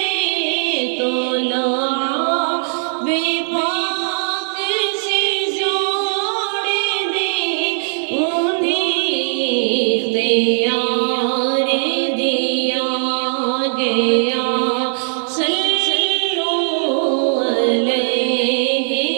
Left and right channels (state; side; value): silent; left; 63 dB below the other